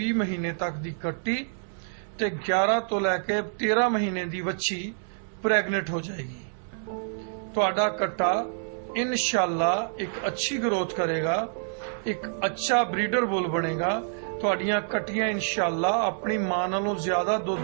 ਮਹੀਨੇ ਤੱਕ ਦੀ ਕੱਟੀ ਤੇ 11 ਤੋਂ ਲੈ ਕੇ 13 ਮਹੀਨੇ ਦੀ ਵੱਛੀ ਪ੍ਰੈਗਨੈਂਟ ਹੋ ਜਾਏਗੀ। ਤੁਹਾਡਾ ਕੱਟਾ ਇਨਸ਼ਾਅੱਲਾ ਇੱਕ ਅੱਛੀ ਗਰੋਥ ਕਰੇਗਾ, ਇੱਕ ਅੱਛਾ ਬਰੀਡਰ ਬੁੱਲ ਬਣੇਗਾ। ਤੁਹਾਡੀਆਂ ਕੱਟੀਆਂ ਇਨਸ਼ਾਅੱਲਾ ਆਪਣੀ ਮਾਂ ਨਾਲੋਂ ਜ਼ਿਆਦਾ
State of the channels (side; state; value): left; silent; digital silence